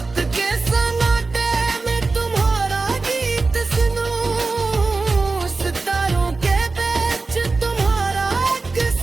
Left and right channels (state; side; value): quieter; left; 3.8 dB